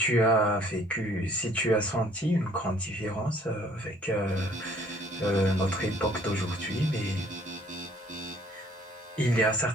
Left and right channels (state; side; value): normal; both; correlation 0.58